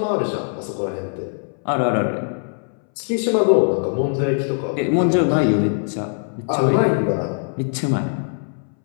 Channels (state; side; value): silent; right; 62 dB below the other